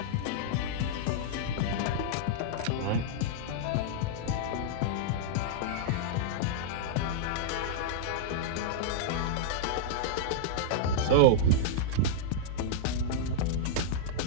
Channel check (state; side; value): different; both; correlation -0.02